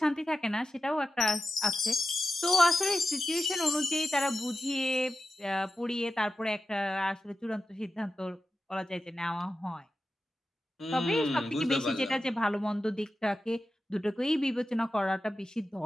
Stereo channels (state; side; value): normal; both; correlation 0.92